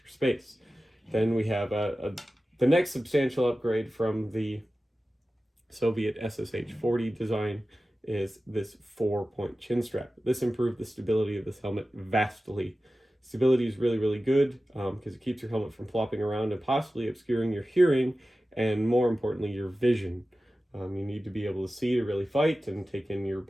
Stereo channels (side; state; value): both; normal; correlation 0.95